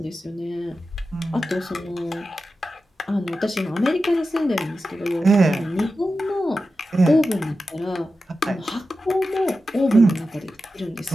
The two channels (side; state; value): both; normal; correlation 0.92